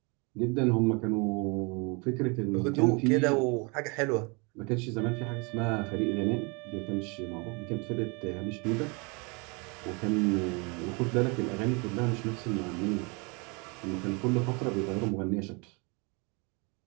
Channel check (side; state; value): left; quieter; 30.6 dB